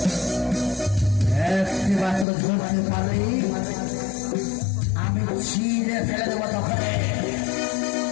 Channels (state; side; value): drops out; right; at 2.2 s